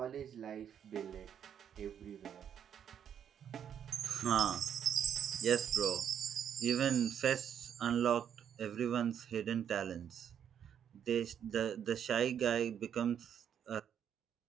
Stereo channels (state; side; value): quieter; left; 8.8 dB